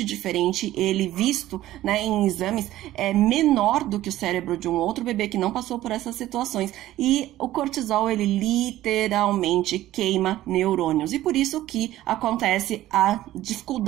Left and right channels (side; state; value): left; quieter; 14.7 dB